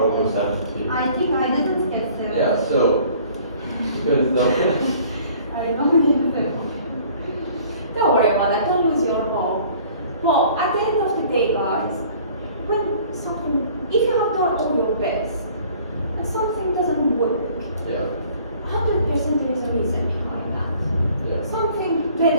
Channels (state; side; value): inverted; both; correlation -0.53